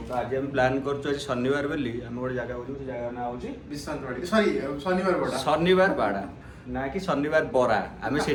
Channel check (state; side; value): identical; both; correlation 1.00